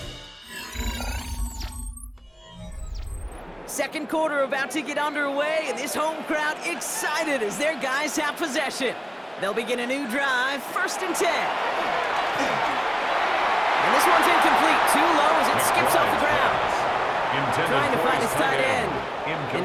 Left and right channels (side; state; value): both; identical; correlation 1.00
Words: Second quarter about to get underway, and this home crowd excited as their guys have possession. They'll begin a new drive, 1st and 10. And this one's incomplete, too low as it skips off the ground. Trying to find his tight end.